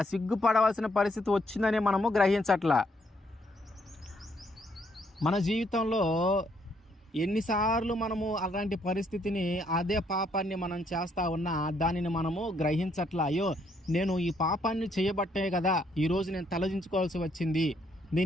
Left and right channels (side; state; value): both; normal; correlation 0.71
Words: సిగ్గుపడవలసిన పరిస్థితి వచ్చిందని మనము గ్రహించట్లా. మన జీవితంలో ఎన్నిసార్లు మనము అలాంటి పరిస్థితిని, అదే పాపాన్ని మనం చేస్తూ ఉన్నా దానిని మనము గ్రహించట్లా. అయ్యో, నేను ఈ పాపాన్ని చేయబట్టే కదా ఈరోజు నేను తలదించుకోవాల్సి వచ్చింది,